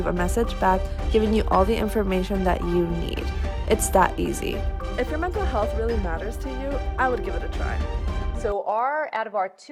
a message back giving you all the information that you need. It's that easy. If your mental health really matters to you, I would give it a try. So out of our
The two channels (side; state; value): both; identical; correlation 1.00